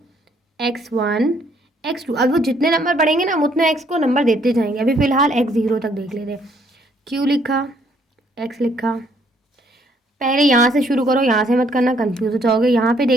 x1, x2, अब वो जितने नंबर बढ़ेंगे ना हम उतने x को नंबर देते जाएंगे। अभी फ़िलहाल x0 तक देख लेते हैं। q लिखा, x लिखा, पहले यहाँ से शुरू करो, यहाँ से मत करना, कंफ्यूज हो जाओगे। यहाँ पे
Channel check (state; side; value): normal; both; correlation 0.67